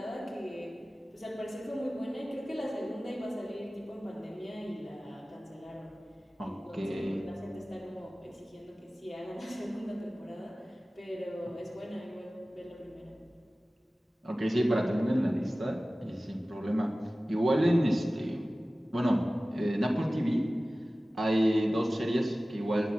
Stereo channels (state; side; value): normal; both; correlation 0.97